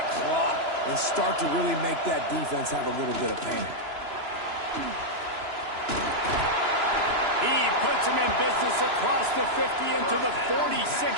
clock and start to really make that defense have a little bit of panic. He puts him in business across the 50 into the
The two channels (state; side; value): late; left; 3.0 ms